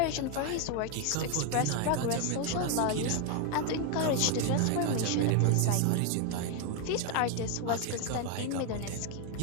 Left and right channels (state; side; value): different; both; correlation 0.01